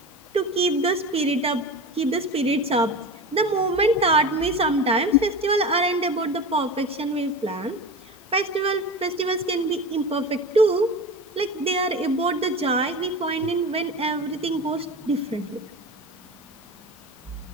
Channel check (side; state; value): both; normal; correlation 0.30